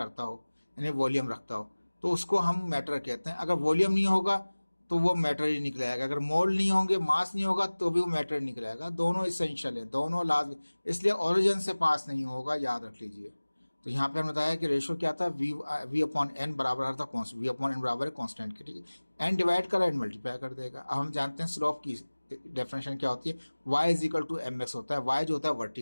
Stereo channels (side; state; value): both; inverted; correlation -1.00